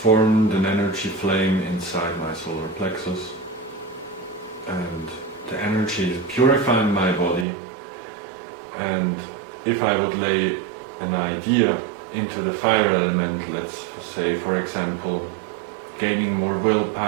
an energy flame inside my solar plexus, and the energy is purifying my body. And if I would lay an idea into the fire element, let's say for example gaining more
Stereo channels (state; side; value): drops out; left; at 7.5 s